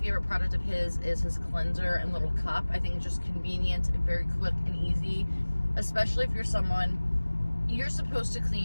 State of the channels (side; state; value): both; inverted; correlation -1.00